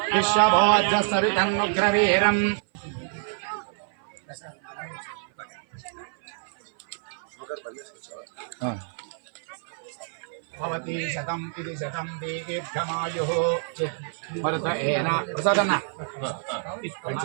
विश्वभोजसरितन्नुग्रवीरम् भवति शतम् इति शतं दीर्घमायुः भरत एन प्रसादన్న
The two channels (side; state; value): left; silent; 55 dB below the other